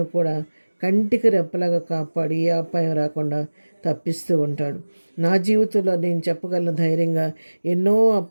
కూడా కంటికి రెప్పలాగా కాపాడి ఏ అపాయం రాకుండా తప్పిస్తూ ఉంటాడు. నా జీవితంలో నేను చెప్పగలను ధైర్యంగా, ఎన్నో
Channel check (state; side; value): inverted; both; correlation -1.00